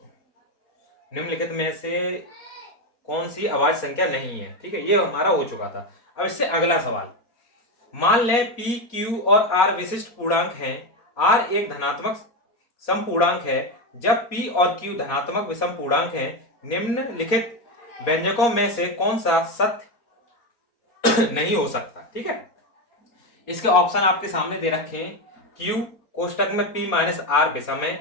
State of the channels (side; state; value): right; late; 4.4 ms